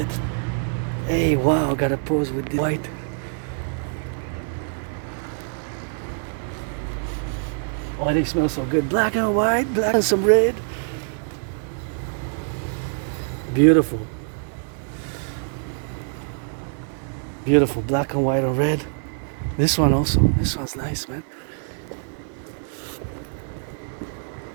Hey, wow, gotta pose with the white. Oh, they smell so good. Black and white, black and some red. Beautiful. Beautiful, black and white and red. This one also, this one's nice, man.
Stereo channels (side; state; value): left; silent; 62 dB below the other